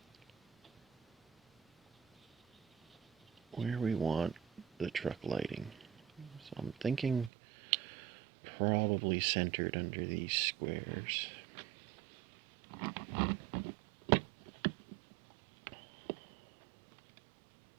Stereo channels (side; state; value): left; drops out; at 7.3 s